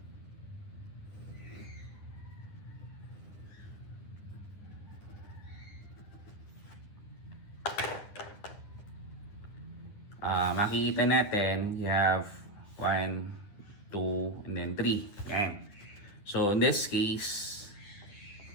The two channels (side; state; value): right; late; 9.9 ms